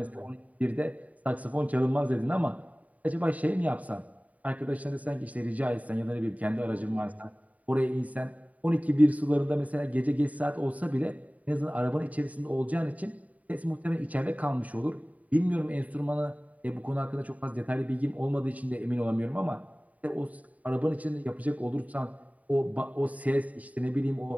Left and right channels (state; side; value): late; left; 0.071 ms